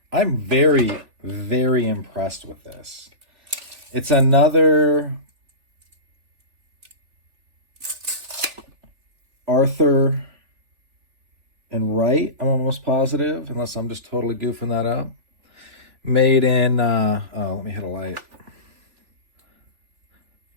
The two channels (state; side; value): late; left; 3.4 ms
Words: I'm very, very impressed with this. It's another Arthur and Wright, I'm almost positive, unless I'm just totally goofing that up. Made in, let me hit a light.